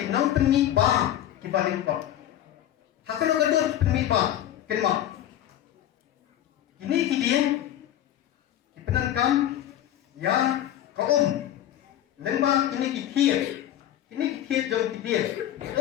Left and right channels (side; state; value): right; quieter; 11.8 dB